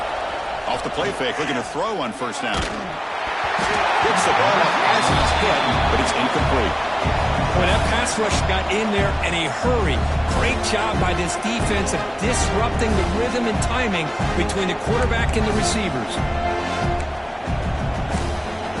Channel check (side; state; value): both; identical; correlation 1.00